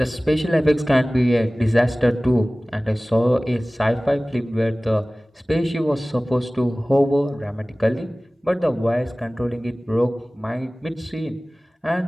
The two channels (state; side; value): normal; both; correlation 0.98